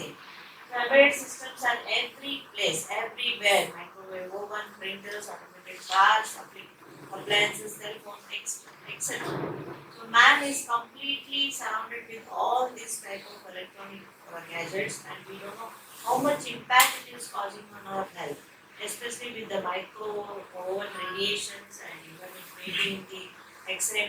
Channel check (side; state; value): both; identical; correlation 1.00